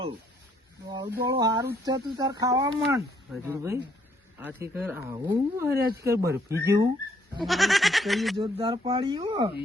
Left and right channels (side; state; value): both; normal; correlation 0.68